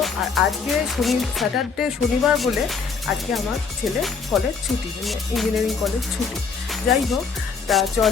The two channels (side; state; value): right; quieter; 5.3 dB